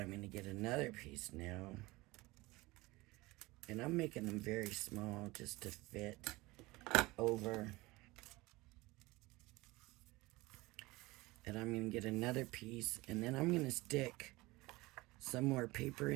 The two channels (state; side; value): quieter; left; 21.4 dB